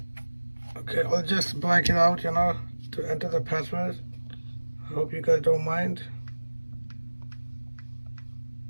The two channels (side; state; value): both; inverted; correlation -1.00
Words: okay, I'll just blank it out, to enter the password. I hope you guys don't mind.